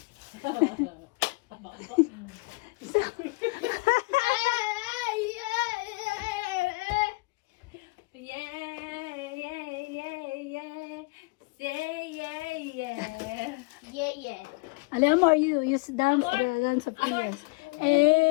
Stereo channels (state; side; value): quieter; right; 27.5 dB